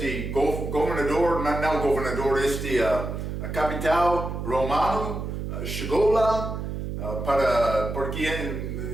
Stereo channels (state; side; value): noise; right; hum, 5 dB below the sound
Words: governador, não governador, a capital romano chegou lá para